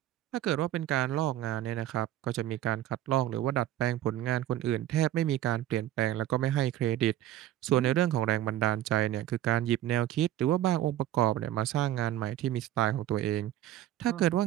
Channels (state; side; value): quieter; left; 13.0 dB